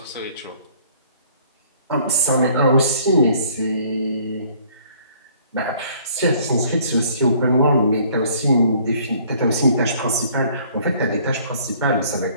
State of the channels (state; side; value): inverted; both; correlation -0.58